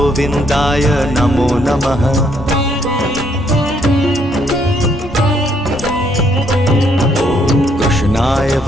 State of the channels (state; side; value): normal; both; correlation 0.70